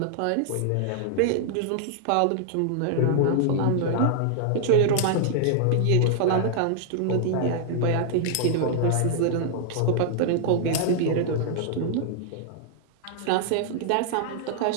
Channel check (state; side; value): different; both; correlation -0.01